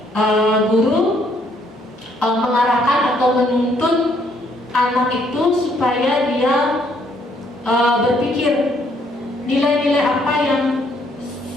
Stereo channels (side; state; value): both; normal; correlation 0.68